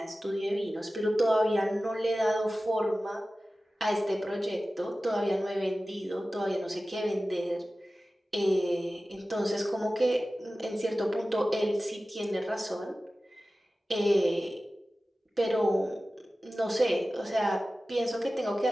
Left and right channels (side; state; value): both; normal; correlation 0.96